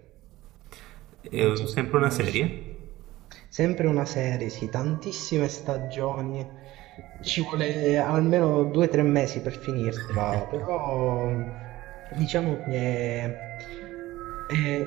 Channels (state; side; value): quieter; left; 17.3 dB